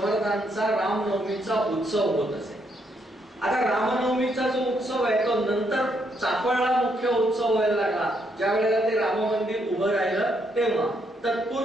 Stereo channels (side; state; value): both; normal; correlation 0.75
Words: रामनवमीचा उत्सव होत असे. आता रामनवमीचा जो उत्सव आहे तो नंतर चाफळला मुख्य उत्सव व्हायला लागला. ज्या वेळेला ते राम मंदिर उभं राहिलं तेव्हा.